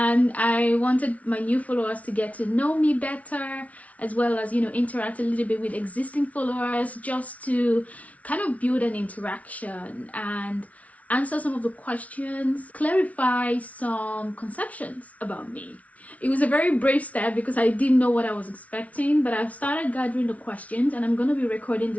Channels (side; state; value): right; late; 0.068 ms